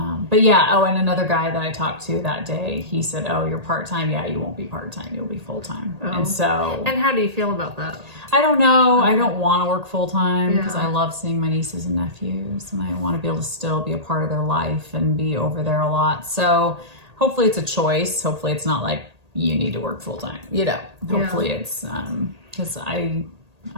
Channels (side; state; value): left; late; 1.8 ms